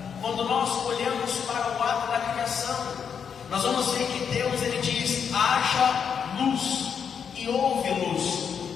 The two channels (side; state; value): right; quieter; 7.1 dB